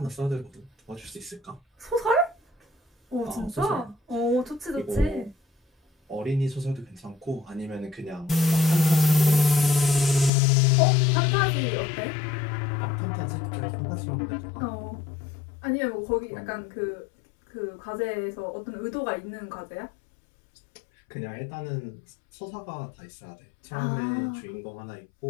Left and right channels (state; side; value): drops out; right; at 10.3 s